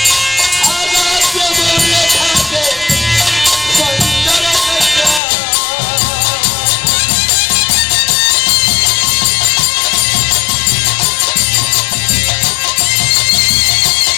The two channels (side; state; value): right; drops out; at 5.2 s